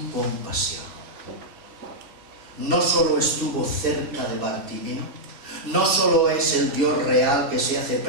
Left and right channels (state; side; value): late; left; 2.7 ms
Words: compasión. No solo estuvo cerca de Bartimeo, no solo es el Dios real que se hace